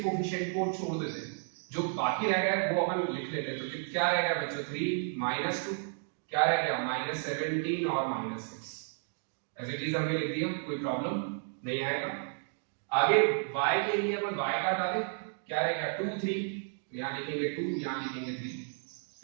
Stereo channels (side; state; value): left; silent; 56 dB below the other